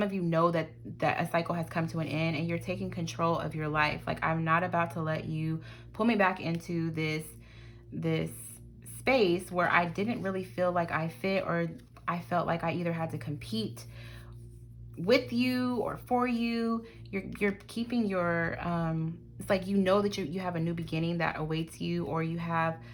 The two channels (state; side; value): identical; both; correlation 1.00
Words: of you know that a cycle has come to an end and you're taking control of your life. Like, I'm not about to let you pull me back into this space where I didn't really feel like I fit, or I felt like I either had to compete with you or for you. You're keeping your it's like, you know that you have a new beginning that awaits you, or you have